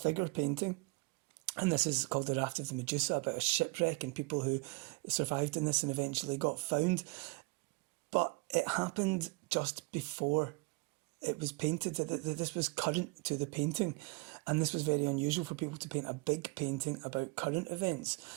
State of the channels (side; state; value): left; quieter; 29.2 dB